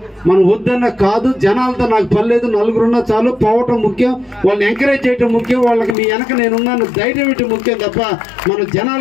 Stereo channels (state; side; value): drops out; right; at 6.0 s